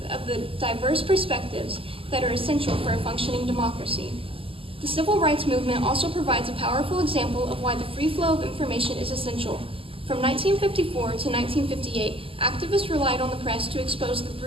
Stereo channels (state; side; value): late; left; 0.26 ms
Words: diverse perspectives that are essential for a functioning democracy. The civil rights movement also provides a powerful example of why the free flow of information is essential. From 1954 to 1958, activists relied on the press to expose the